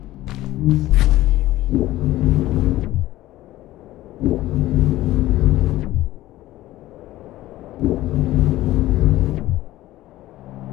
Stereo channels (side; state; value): right; quieter; 16.0 dB